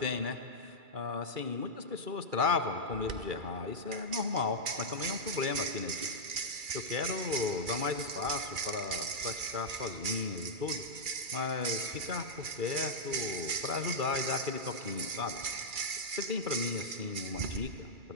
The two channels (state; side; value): late; left; 2.3 ms